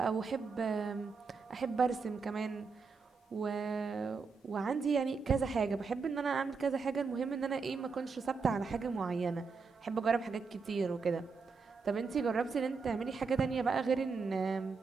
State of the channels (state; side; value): quieter; left; 4.9 dB